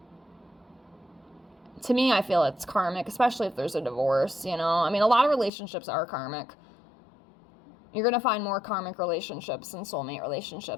to me, I feel it's karmic, especially if there's a divorce, you know? I mean, a lot of relationships are karmic. You're going to find more karmic relationships and soulmate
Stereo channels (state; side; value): drops out; right; at 5.5 s